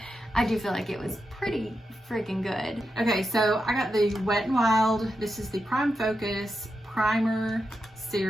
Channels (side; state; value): both; normal; correlation 0.88